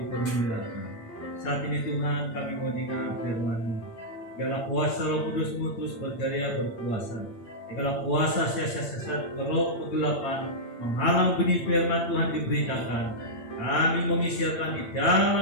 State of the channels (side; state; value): right; late; 8.8 ms